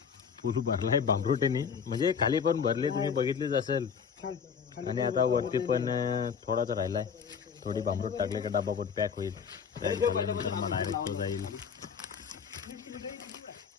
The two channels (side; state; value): right; quieter; 6.7 dB